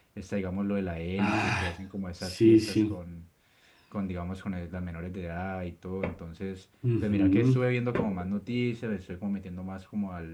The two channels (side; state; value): both; identical; correlation 1.00